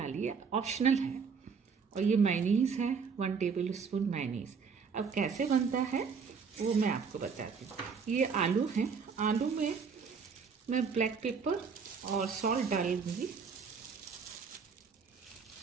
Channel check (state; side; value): quieter; left; 5.8 dB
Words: है, ऑप्शनल है। और ये मायोनीज़ है, 1 टेबल स्पून मायोनीज़। अब कैसे बनता है वो मैं आपको बताती हूँ। ये आलू हैं, आलू में मैं ब्लैक पेपर और सॉल्ट डालूंगी।